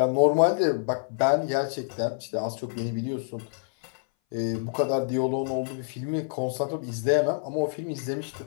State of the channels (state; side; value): silent; right; 58 dB below the other